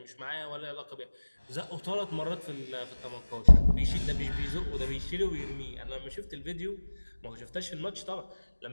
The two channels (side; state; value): both; inverted; correlation -1.00